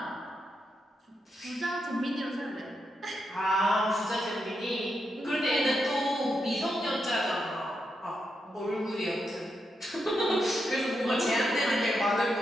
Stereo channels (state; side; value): normal; both; correlation 0.84